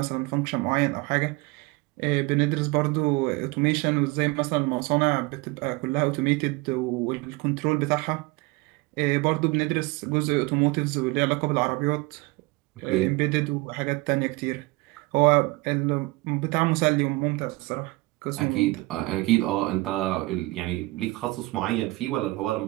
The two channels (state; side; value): quieter; left; 22.7 dB